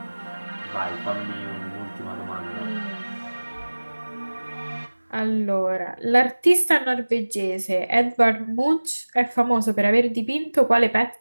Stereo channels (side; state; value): both; inverted; correlation -1.00